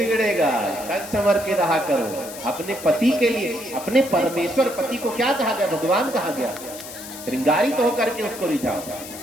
सज संवर के रहा करो अपने पति के लिए। अपने परमेश्वर पति को क्या कहा गया? भगवान कहा गया। श्रृंगारित तो होकर के उसको रिझाओ।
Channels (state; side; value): noise; left; hiss, 13 dB below the sound